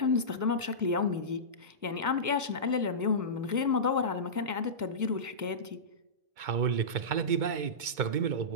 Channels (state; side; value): late; left; 2.2 ms